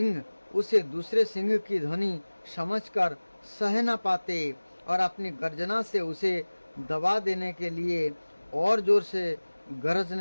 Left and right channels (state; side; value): inverted; both; correlation -1.00